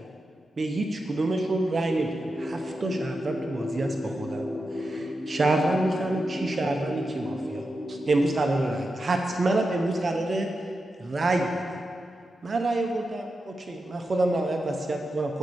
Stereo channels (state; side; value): normal; both; correlation 0.89